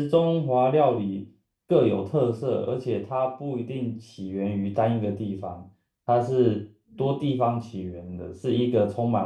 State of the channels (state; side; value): identical; both; correlation 1.00